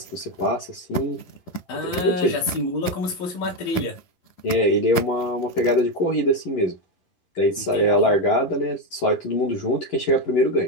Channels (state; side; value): late; right; 11 ms